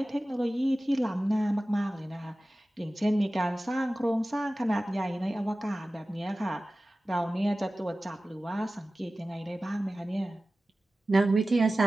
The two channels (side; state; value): both; normal; correlation 0.96